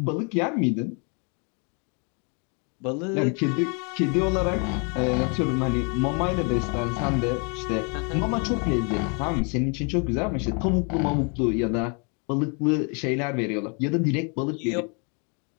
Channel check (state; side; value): quieter; right; 35.7 dB